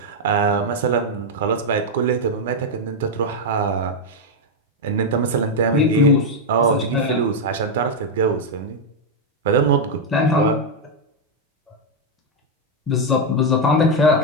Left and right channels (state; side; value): normal; both; correlation 0.02